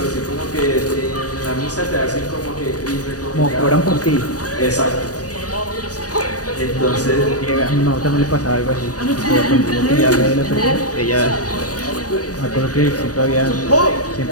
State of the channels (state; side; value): late; right; 0.68 ms